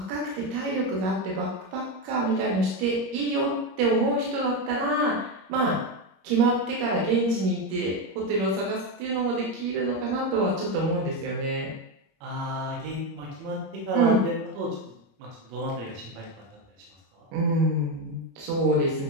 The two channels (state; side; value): late; left; 21 ms